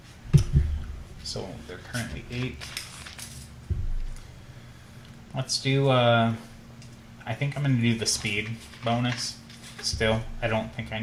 So they're currently 8. Let's do, I think I'm going to do the speed bonus still. I don't think I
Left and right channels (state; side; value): identical; both; correlation 1.00